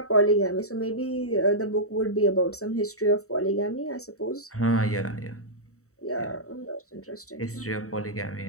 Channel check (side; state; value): right; late; 0.64 ms